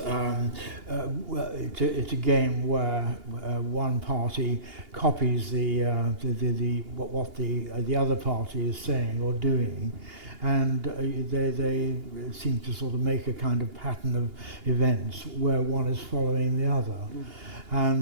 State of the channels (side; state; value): left; late; 2.8 ms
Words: it's a game where one party copies what the other party is saying or doing, and they seem to sort of make a kind of pattern of events where one is following the other.